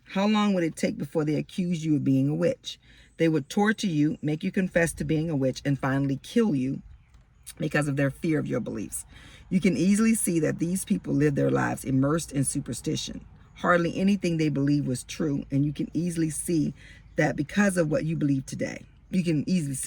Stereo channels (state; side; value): identical; both; correlation 1.00